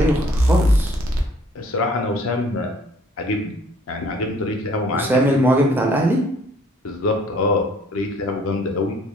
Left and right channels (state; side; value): normal; both; correlation 0.59